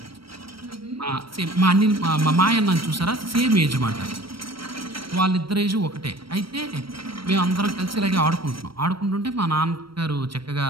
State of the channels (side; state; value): left; late; 0.75 ms